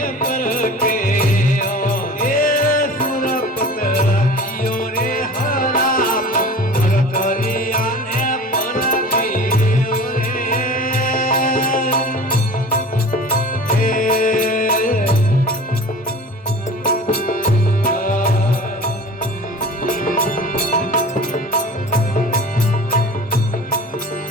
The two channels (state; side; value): normal; both; correlation 0.40